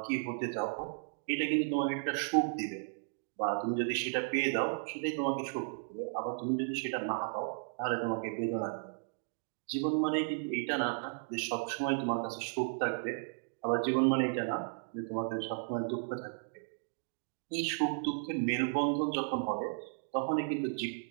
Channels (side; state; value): left; silent; digital silence